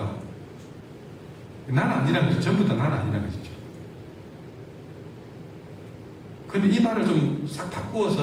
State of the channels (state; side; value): identical; both; correlation 1.00